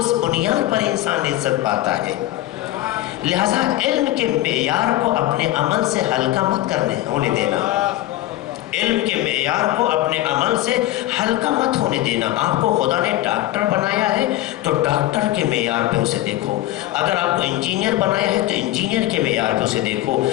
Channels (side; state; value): right; quieter; 15.5 dB